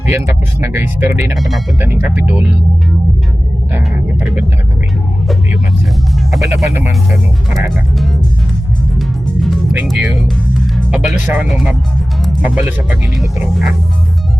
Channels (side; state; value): both; normal; correlation 0.96